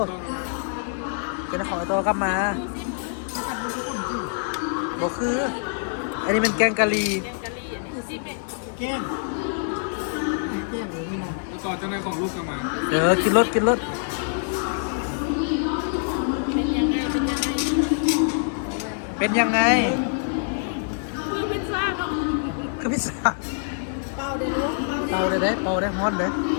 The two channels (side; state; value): right; silent; digital silence